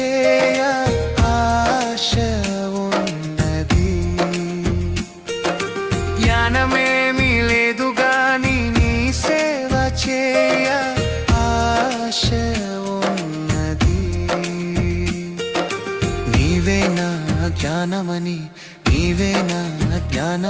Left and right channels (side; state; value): both; identical; correlation 1.00